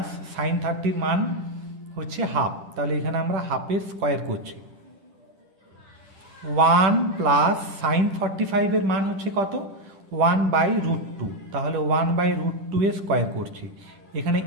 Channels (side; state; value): left; late; 10 ms